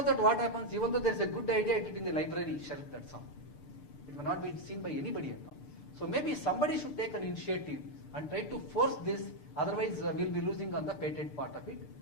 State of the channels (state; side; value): late; right; 6.8 ms